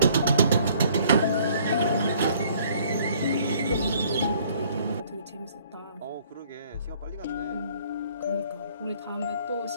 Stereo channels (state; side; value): inverted; both; correlation -0.59